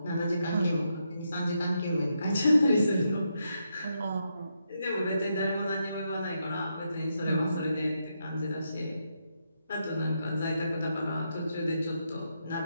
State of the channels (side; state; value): both; inverted; correlation -0.82